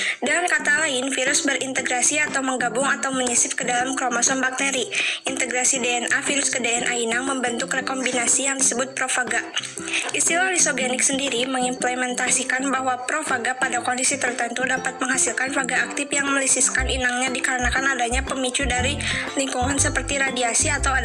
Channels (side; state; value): both; identical; correlation 1.00